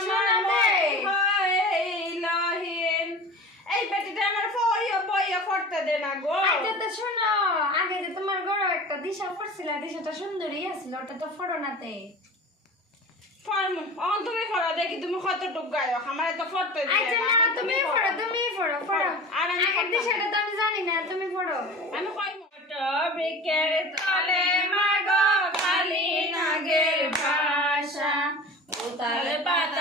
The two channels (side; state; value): both; normal; correlation 0.37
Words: মতি হইল হে। এই বেটিটা আমার বইয়া করতে দে না গো। আচ্ছা তো শোনো আগে যে তোমার গড় একটা দিশা পড়ছিল দিশাটা সুন্দরী আছিল ওটা তো ফটো নাতে তুমি ফটো দেখি তুমি কতটুক গায়ক আমার তো ফটো আচ্ছা না তুমি ফটো আর আমি আগের দিশাটা তো আমি জানি না তুমি ফটো আমি কই মোটো বিকের তলে মাগো খালি নাগের ভাষা উতালে